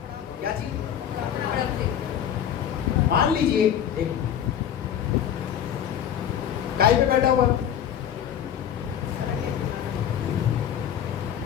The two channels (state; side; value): quieter; right; 9.6 dB